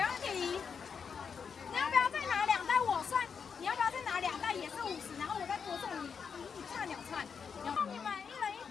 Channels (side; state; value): right; quieter; 6.3 dB